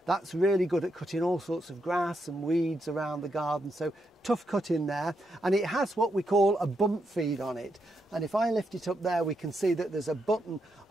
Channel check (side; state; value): both; normal; correlation 0.81